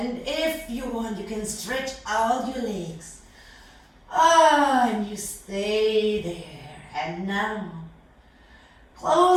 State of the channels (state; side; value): identical; both; correlation 1.00